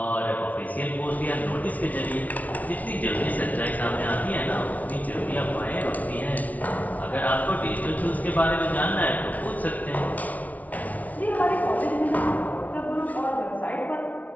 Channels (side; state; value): right; late; 0.072 ms